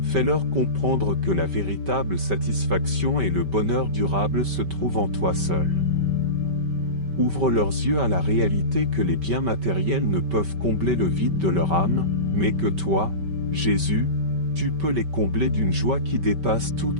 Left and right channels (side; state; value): left; late; 5.2 ms